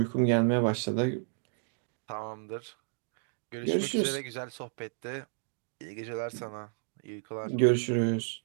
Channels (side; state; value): left; silent; digital silence